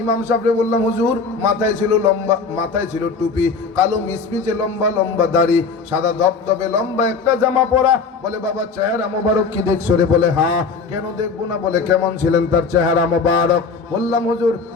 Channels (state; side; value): quieter; right; 4.8 dB